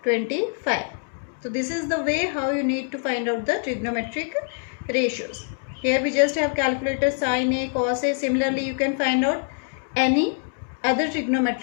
25. So this is the way how you need to find out the trigonometric ratios. Here we just have calculated sine A, cos A. Similarly you can find out any other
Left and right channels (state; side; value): silent; right; 62 dB below the other